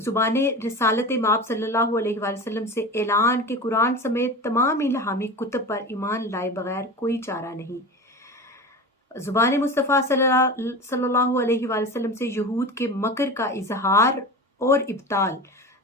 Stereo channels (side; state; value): both; normal; correlation 0.30